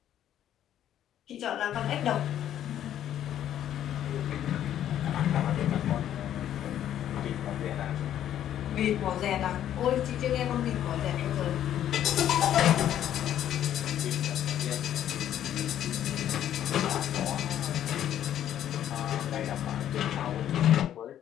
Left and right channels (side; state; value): right; quieter; 11.0 dB